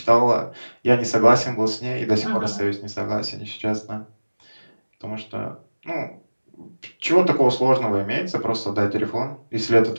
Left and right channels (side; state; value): both; inverted; correlation -1.00